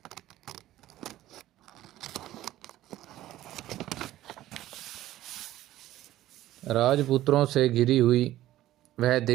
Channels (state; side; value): quieter; left; 14.5 dB